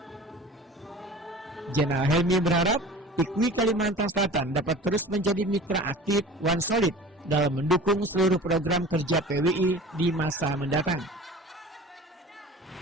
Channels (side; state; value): both; normal; correlation 0.40